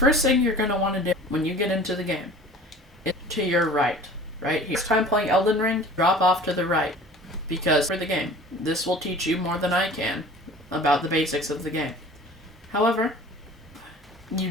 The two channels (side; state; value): both; normal; correlation 0.44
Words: thing you're going to want to do when you get into the game is to your right here. First time playing Elden Ring, drop off to the right, because for the game, this will teach you more than I can about the basics of the game. However, you